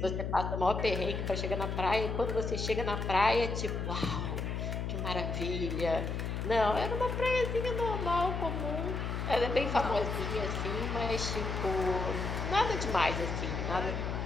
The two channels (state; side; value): noise; left; hum, 2 dB below the sound